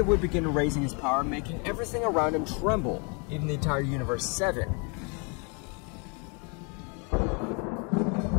would begin raising his power, making everything around him tremble, even the entire Universe 7.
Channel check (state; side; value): quieter; right; 34.4 dB